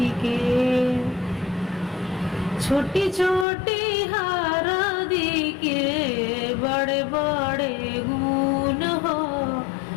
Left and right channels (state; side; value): drops out; right; at 3.5 s